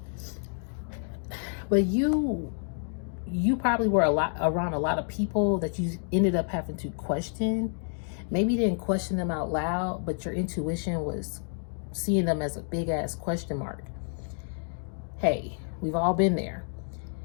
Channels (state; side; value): silent; right; 58 dB below the other